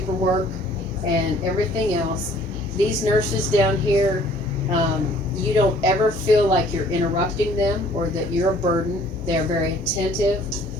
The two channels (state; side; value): normal; both; correlation 0.56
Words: and everything else. These nurses down here, you don't ever feel like you're interrupting them or that you're a burden. They're very attentive.